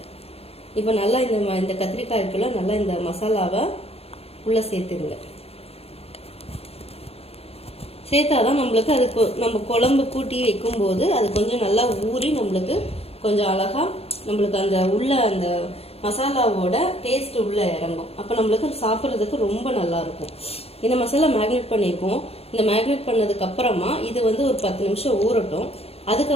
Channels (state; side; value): late; right; 0.29 ms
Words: இப்போ நல்லா இந்த கத்திரிக்காய்க்குள்ள நல்லா இந்த மசாலாவை உள்ள சேர்த்துருங்க. சேர்த்தாதான் நம்மளுக்கு அதுக்கு நம்ம குழம்பு கூட்டி வைக்கும்போது அது கொஞ்சம் நல்லா ஊறி நம்மளுக்கு கொஞ்சம் அழகா நம்மளுக்கு அந்த மசாலாவோட டேஸ்ட் உள்ள இறங்கும். அப்போ நம்மளுக்கு சாப்பிட்றதுக்கு ரொம்ப நல்லா இருக்கும். இந்த மசாலா மேக்னேட் பண்ணியிருக்கோம். இந்த மேக்னேட் பண்ணதுக்கு அப்புறமா இது வந்து ஒரு 10 நிமிஷம் ஊறட்டும்.